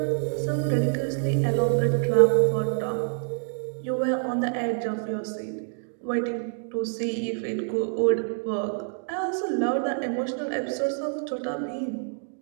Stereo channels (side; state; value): left; silent; digital silence